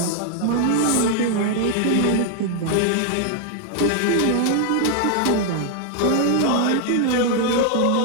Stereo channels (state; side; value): different; both; correlation 0.00